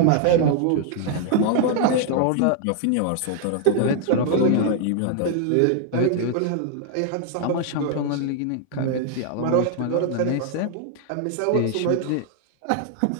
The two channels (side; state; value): both; different; correlation 0.00